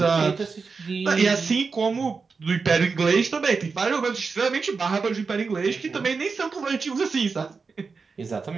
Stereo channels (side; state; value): left; quieter; 4.8 dB